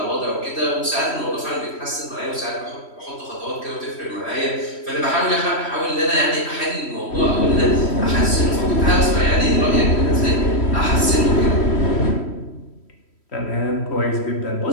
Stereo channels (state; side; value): late; right; 3.1 ms